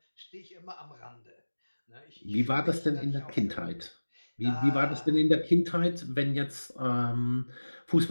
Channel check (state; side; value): inverted; both; correlation -1.00